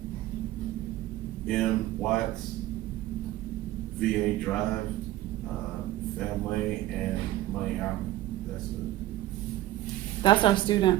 M. Watts, VA Drive, Family, and Money Album. That's it. That's our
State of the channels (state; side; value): quieter; left; 15.2 dB